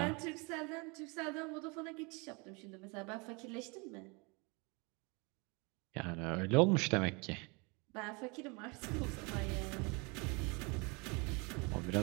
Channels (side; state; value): left; quieter; 29.5 dB